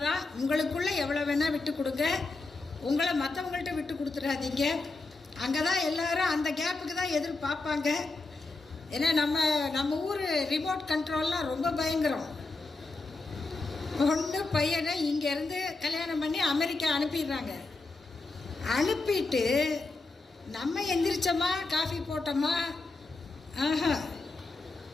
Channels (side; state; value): right; quieter; 3.5 dB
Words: உங்களுக்குள்ள எவ்வளோ வேணால் விட்டு கொடுங்க, உங்களை மற்றவங்கள்ட்ட விட்டு கொடுத்துடாதீங்க. அங்கே தான் எல்லாரும் அந்த கேப்புக்கு தான் எதிர்பார்ப்பாங்க. ஏன்னா நம்ம ஊர் ரிமோட் கண்ட்ரோல்லாம் ரொம்ப பயங்கரம். ஒன்று பையனை இங்கேருந்து கல்யாணம் பண்ணி அமெரிக்கா அனுப்பிடுறாங்க. அனுப்பிட்டு நம்ம எந்திரிச்சோமா, காஃபி போட்டோமா, ஆஹா,